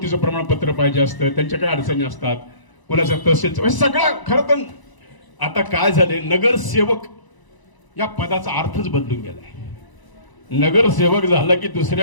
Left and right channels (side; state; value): right; late; 1.0 ms